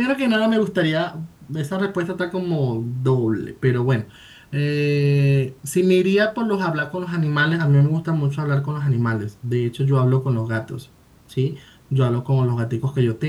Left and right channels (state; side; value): identical; both; correlation 1.00